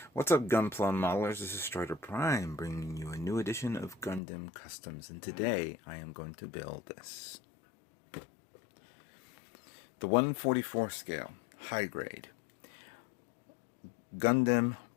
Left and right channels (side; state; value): right; drops out; at 4.2 s